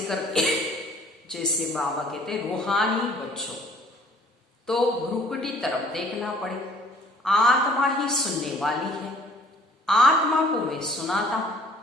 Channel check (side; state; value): both; normal; correlation 0.55